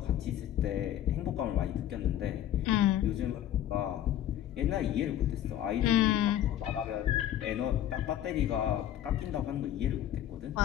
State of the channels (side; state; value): right; quieter; 11.6 dB